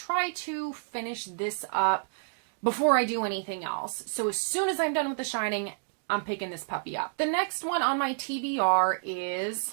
to finish this up before I do anything else. So as soon as I'm done with The Shining, I'm picking this puppy up. The next one on my TBR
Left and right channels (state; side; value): silent; left; digital silence